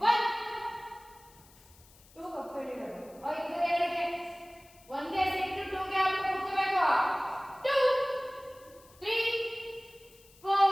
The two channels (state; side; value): noise; left; hiss, 26 dB below the sound